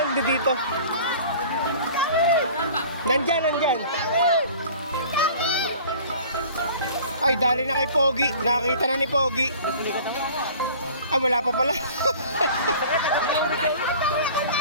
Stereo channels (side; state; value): both; inverted; correlation -0.45